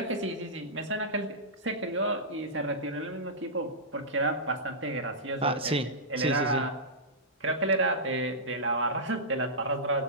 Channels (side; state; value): both; normal; correlation -0.15